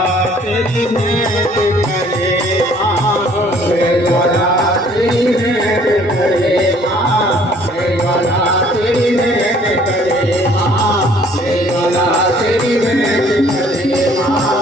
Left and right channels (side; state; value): both; normal; correlation 0.58